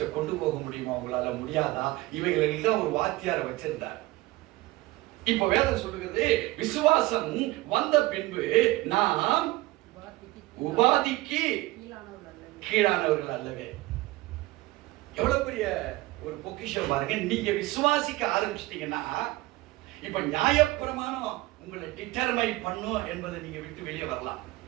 கொண்டு போக முடியுமா, உங்களால முடியாதா, இவைகளில் தான் ஒரு வாத்தியாரை வச்சிருந்தார். இப்ப வேதம் சொல்லுகிறது, விசுவாசம் வந்த பின்பு நாம் உபாதிக்கு கீழானவர்கள் அல்லவே. எவ்வளவு பெரிய ஒரு பொக்கிஷம் பாருங்க. நீங்க விசுவாசிக்க ஆரம்பிச்சிட்டீங்கன்னா இப்ப நியாயப்பிரமாணம் உங்களை டிட்டர்மைன் பண்ணும் என்பதை நீங்க விட்டு வெளியே வரலாம்.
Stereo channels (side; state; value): left; quieter; 19.3 dB